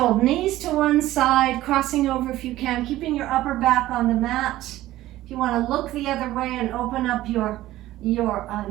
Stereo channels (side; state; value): left; quieter; 15.4 dB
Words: knees to one side, crossing over if you can, keeping your upper back on the mat. If you want to look the other way and open up your